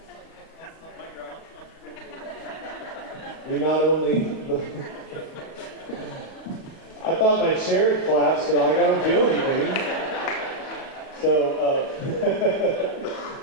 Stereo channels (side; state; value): right; late; 37 ms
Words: we not only, I thought my chair had collapsed, but I don't feel anything. So,